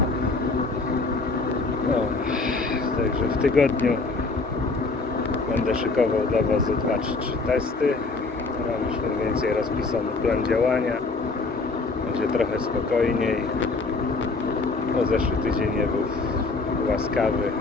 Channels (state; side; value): quieter; right; 3.8 dB